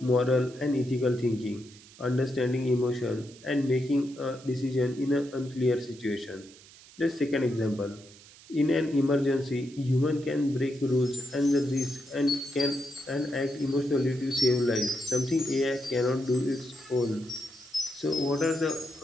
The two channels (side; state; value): right; noise; hiss, 22 dB below the sound